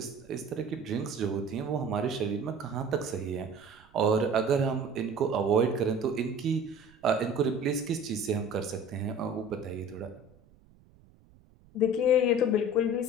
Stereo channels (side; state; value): right; noise; rumble, 28 dB below the sound